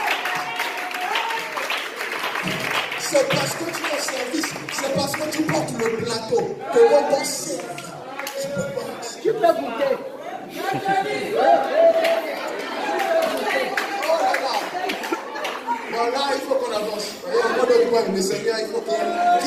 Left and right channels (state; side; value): identical; both; correlation 1.00